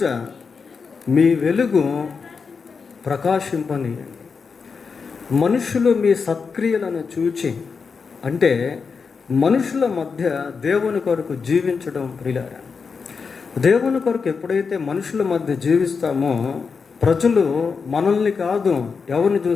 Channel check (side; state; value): right; quieter; 5.3 dB